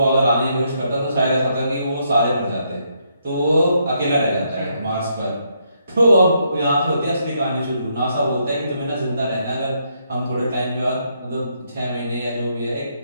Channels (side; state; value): both; inverted; correlation -0.76